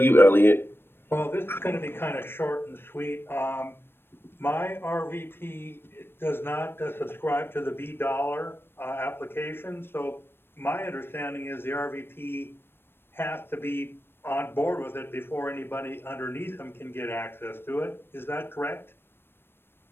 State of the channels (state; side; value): late; right; 0.10 ms